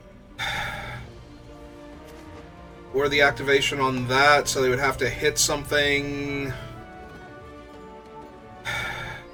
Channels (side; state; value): both; identical; correlation 1.00